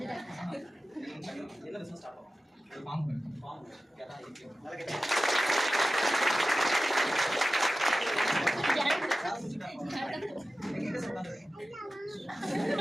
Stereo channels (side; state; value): both; normal; correlation 0.95